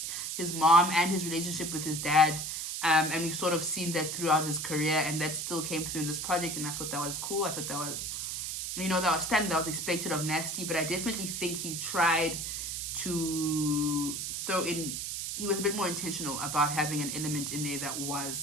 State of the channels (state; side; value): noise; right; hiss, 3 dB below the sound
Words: his mom and his relationship with his dad. And we've sort of seen that throughout his career, and that still came through in this project, and I thought that was cool. I thought that was, that was standard, that was expected of Nasty, but I definitely think he tried to throw in, he was a bit more intentional about having an element in there that